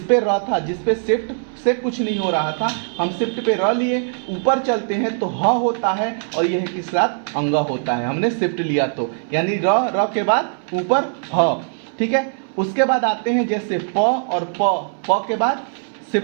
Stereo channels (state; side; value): silent; left; 63 dB below the other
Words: पे र था, जिस पे शिफ्ट से कुछ नहीं हो रहा था, हम शिफ्ट पे र लिए, ऊपर चलते हैं तो ह होता है और यह किस साथ अंग होता है, हमने शिफ्ट लिया तो, यानी र के बाद ऊपर ह। ठीक है। उसके बाद आते हैं जैसे प और प के बाद